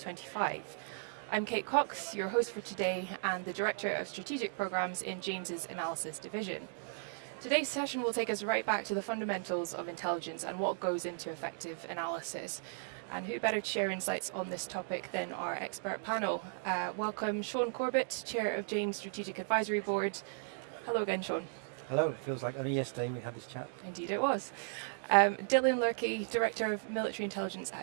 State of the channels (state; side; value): silent; left; digital silence